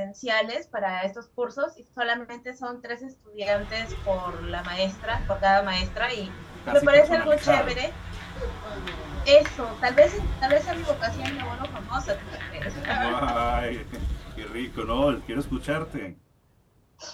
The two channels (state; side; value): identical; both; correlation 1.00